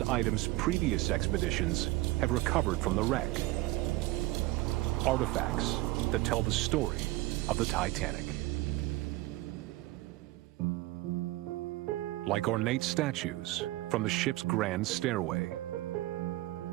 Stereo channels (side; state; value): left; quieter; 18.7 dB